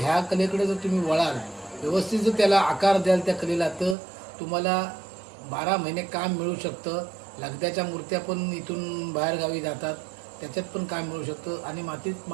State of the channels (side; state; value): left; drops out; at 4.0 s